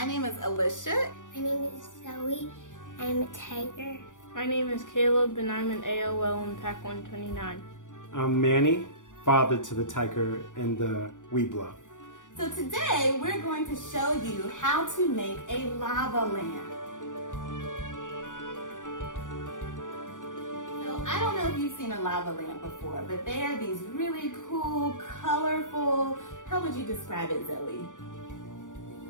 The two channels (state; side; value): late; right; 0.87 ms